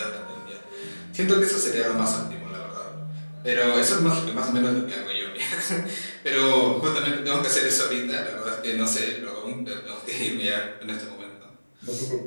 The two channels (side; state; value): both; inverted; correlation -1.00